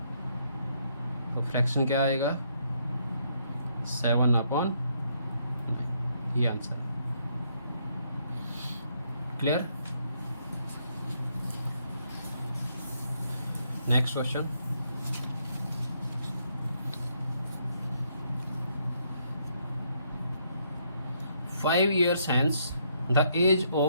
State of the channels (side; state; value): both; inverted; correlation -0.73